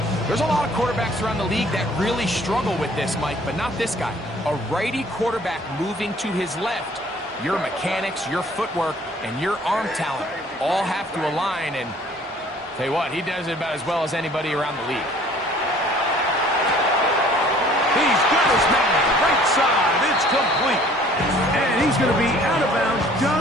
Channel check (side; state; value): both; normal; correlation 0.54